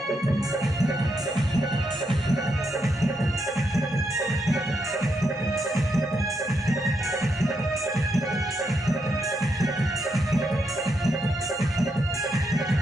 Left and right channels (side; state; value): both; normal; correlation 0.80